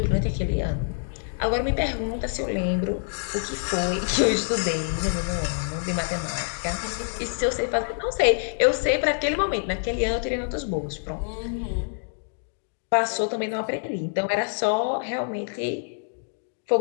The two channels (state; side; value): silent; right; digital silence